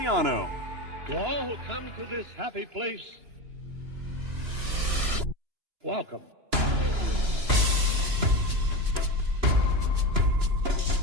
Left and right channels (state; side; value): late; left; 2.9 ms